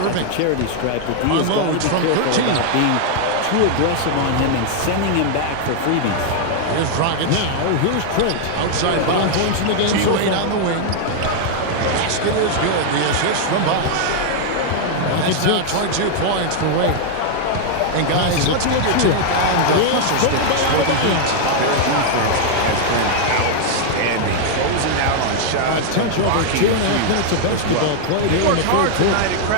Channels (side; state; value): both; different; correlation 0.00